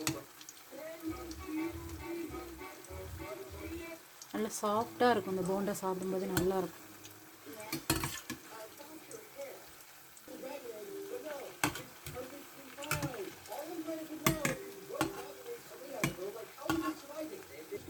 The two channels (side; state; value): both; identical; correlation 1.00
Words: நல்லா சாஃப்டாக இருக்கும் இந்த போண்டா, சாப்பிடும்போது நல்லாயிருக்கும்.